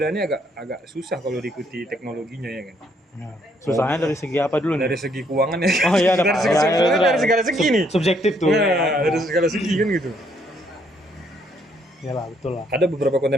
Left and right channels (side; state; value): both; normal; correlation 0.70